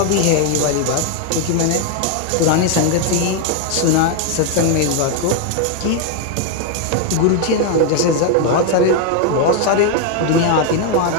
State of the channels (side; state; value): both; different; correlation 0.01